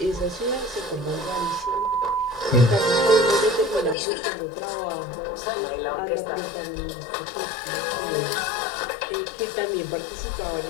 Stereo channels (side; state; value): right; drops out; at 4.0 s